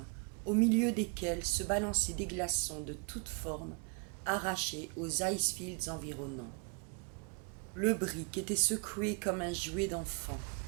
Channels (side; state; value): left; quieter; 34.3 dB